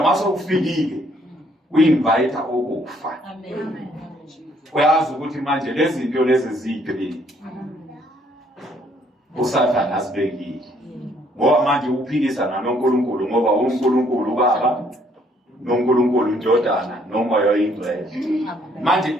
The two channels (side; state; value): both; normal; correlation 0.65